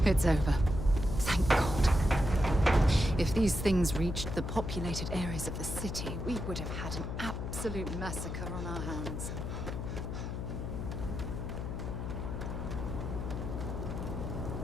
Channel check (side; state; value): left; noise; hum, 4 dB below the sound